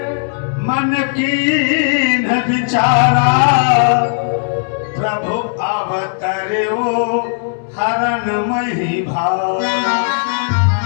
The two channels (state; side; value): silent; right; digital silence